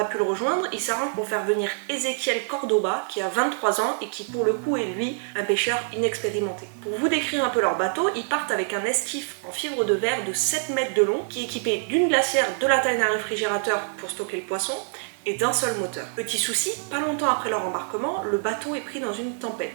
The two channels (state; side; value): silent; left; digital silence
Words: pu le rejoindre, il s'arrange pour faire venir Ezequiel Cordoba, qui a 23 ans et qui pour le coup est lui un pêcheur inexpérimenté. Pour vous décrire un peu leur bateau, ils partent avec un esquif en fibre de verre de 7 mètres de long, qui est équipé d'une glacière de la taille d'un réfrigérateur pour stocker le poisson, et d'un seul moteur. Petit souci, pas longtemps après leur embarquement, le bateau est pris dans une